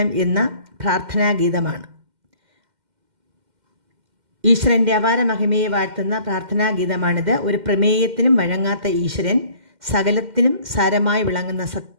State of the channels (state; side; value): late; left; 2.1 ms